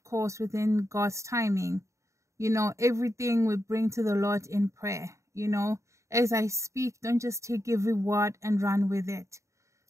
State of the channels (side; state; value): left; late; 0.14 ms